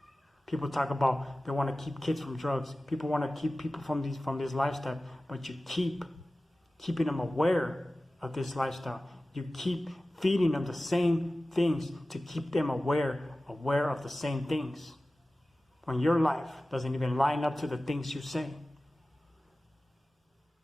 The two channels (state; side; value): normal; both; correlation 0.96